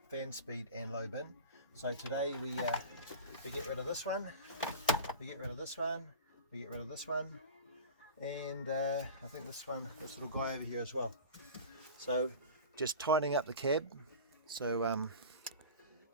fan speed and low bin. So today we get rid of this one, we get rid of this one, we get rid of this one, and I think this little guy over here as well. So just tightening up the cab, so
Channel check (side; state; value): both; inverted; correlation -0.34